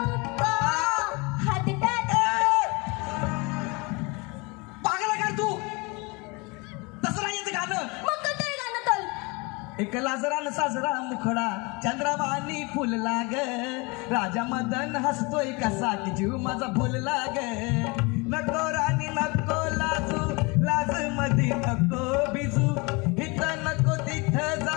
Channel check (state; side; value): quieter; right; 27.7 dB